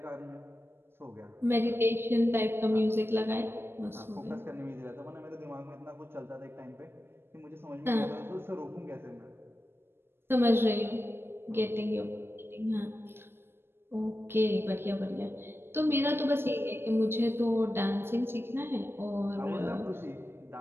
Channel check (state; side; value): late; left; 0.11 ms